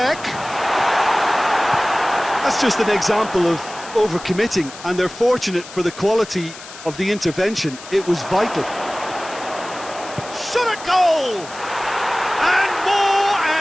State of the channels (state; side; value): noise; left; hiss, 15 dB below the sound